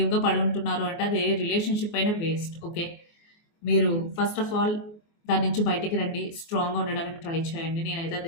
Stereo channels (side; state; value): right; late; 24 ms